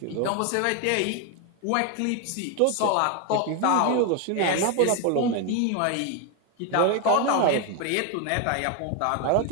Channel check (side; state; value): both; different; correlation 0.01